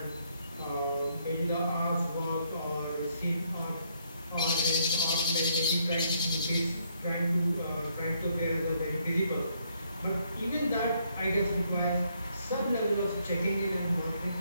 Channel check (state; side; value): inverted; both; correlation -0.71